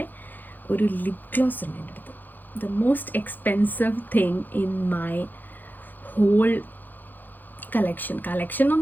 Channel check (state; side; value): late; right; 0.087 ms